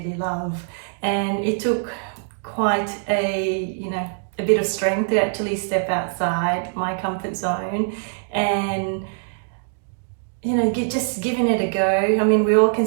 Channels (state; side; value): silent; left; digital silence